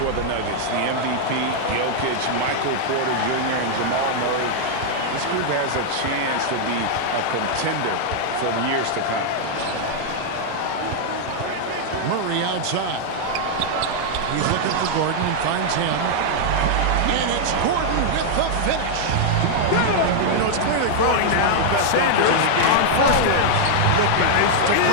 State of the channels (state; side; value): different; both; correlation -0.01